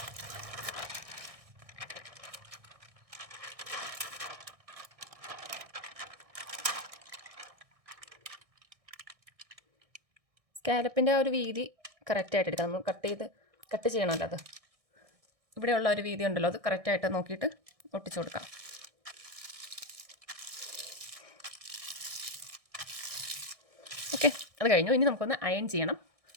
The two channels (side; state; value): left; late; 1.6 ms